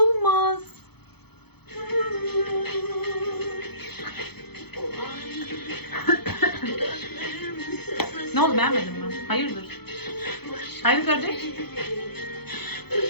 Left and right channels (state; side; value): late; right; 0.97 ms